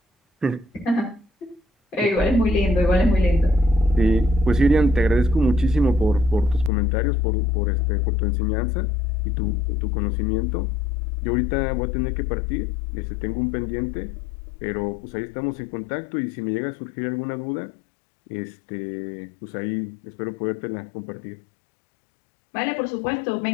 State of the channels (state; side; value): drops out; right; at 6.7 s